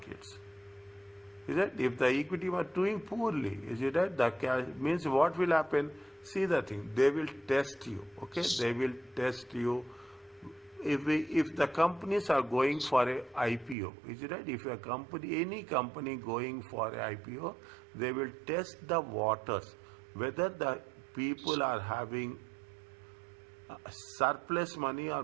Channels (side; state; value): left; drops out; at 13.8 s